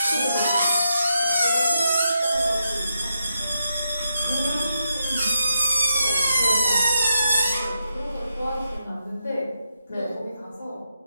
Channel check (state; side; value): inverted; both; correlation -0.83